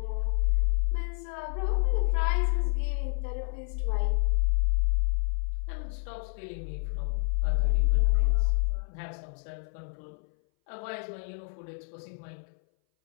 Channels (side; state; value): right; silent; 59 dB below the other